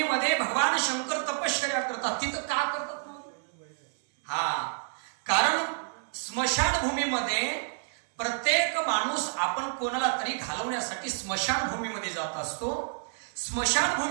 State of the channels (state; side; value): silent; left; 58 dB below the other